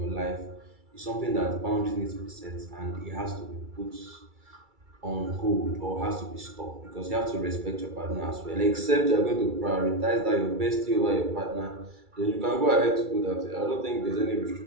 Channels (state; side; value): late; left; 2.3 ms